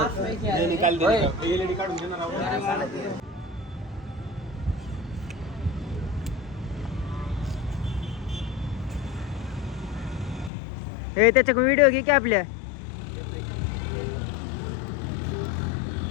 हे त्याच्या व्हिडिओ घे की आपल्या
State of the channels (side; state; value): right; drops out; at 10.5 s